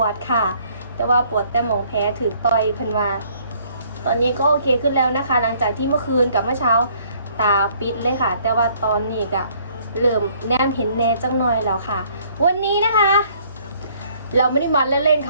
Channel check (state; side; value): inverted; both; correlation -0.62